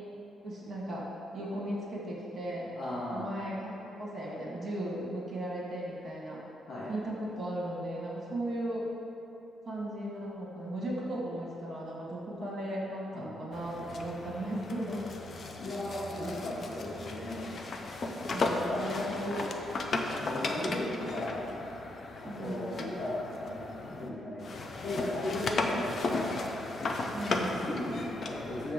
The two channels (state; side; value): normal; both; correlation 0.78